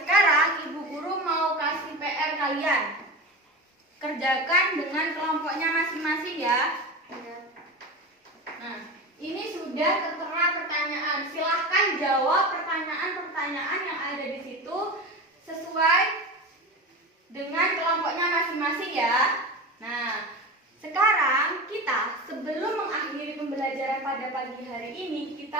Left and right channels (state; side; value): normal; both; correlation 0.27